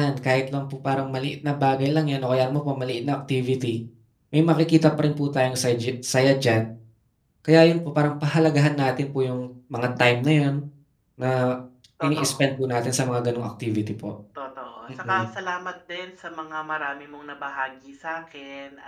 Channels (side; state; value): both; identical; correlation 1.00